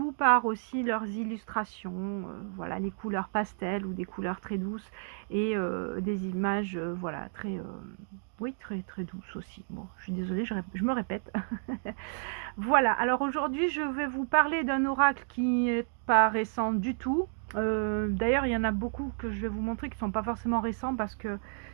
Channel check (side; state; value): left; silent; digital silence